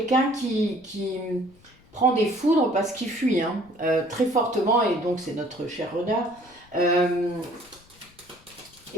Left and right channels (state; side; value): noise; left; rumble, 28 dB below the sound